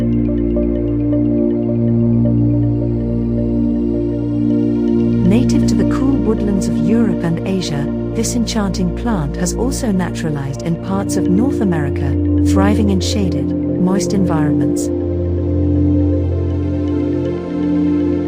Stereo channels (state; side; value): identical; both; correlation 1.00